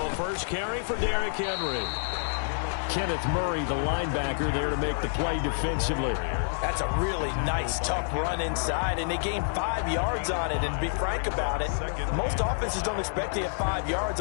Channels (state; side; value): silent; right; digital silence